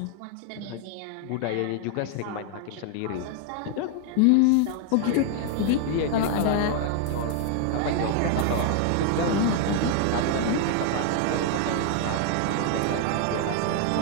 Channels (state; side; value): different; both; correlation 0.00